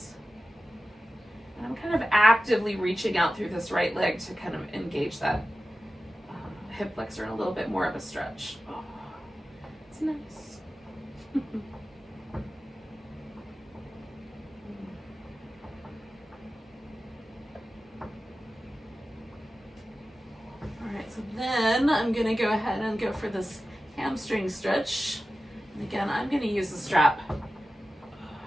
And I'm kind of actively reaching out through this right leg to kind of engage that hip flexor in a little bit more of a stretch. Oh, it's nice. So then I'm going to go ahead and go for this hamstring stretch. And again, I'm going to use the strap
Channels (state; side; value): normal; both; correlation 0.94